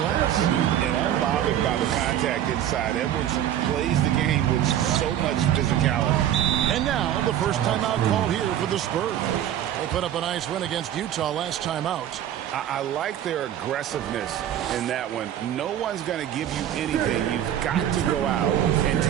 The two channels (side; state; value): left; quieter; 11.1 dB